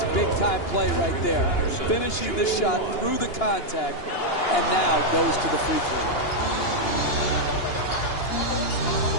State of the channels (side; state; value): right; late; 2.9 ms